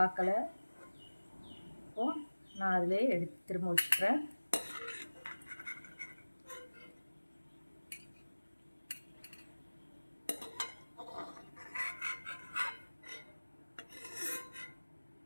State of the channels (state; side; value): inverted; both; correlation -1.00